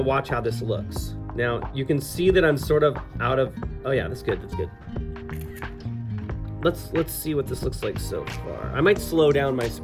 watch how this looks. Now, you can see that I'm sort of out of, oh yeah, that's good, that's good. Let's see what this looks like so far. I might slow down my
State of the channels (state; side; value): identical; both; correlation 1.00